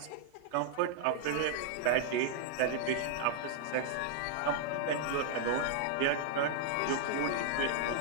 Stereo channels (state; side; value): different; both; correlation -0.01